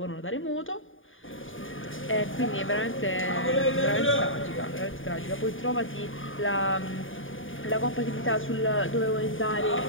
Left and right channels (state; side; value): late; right; 0.58 ms